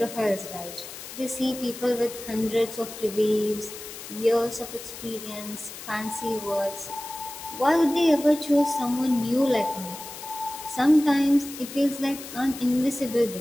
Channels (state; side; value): noise; left; hiss, 12 dB below the sound